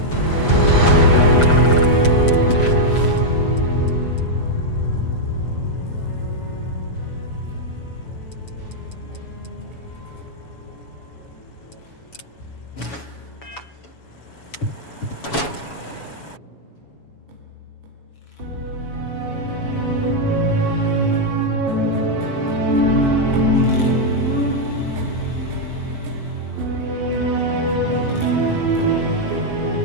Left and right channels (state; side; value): late; right; 7.1 ms